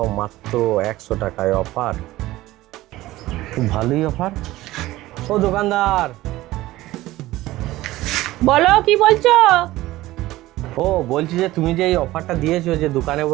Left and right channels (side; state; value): left; quieter; 17.0 dB